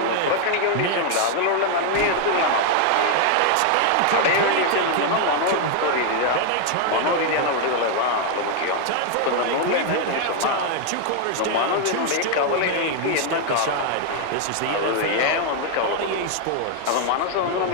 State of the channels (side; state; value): both; different; correlation 0.00